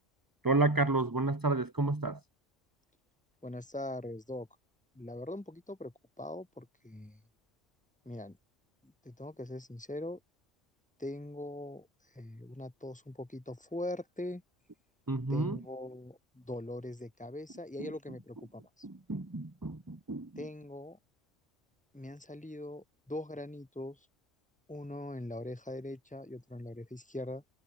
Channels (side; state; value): both; normal; correlation 0.33